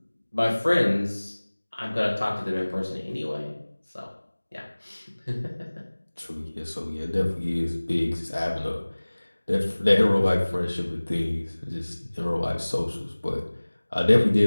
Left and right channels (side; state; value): both; inverted; correlation -1.00